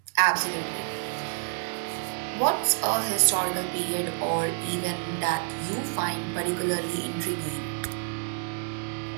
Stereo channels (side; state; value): left; silent; digital silence